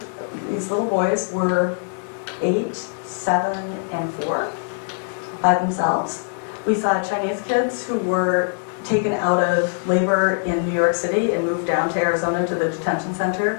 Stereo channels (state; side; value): silent; right; 64 dB below the other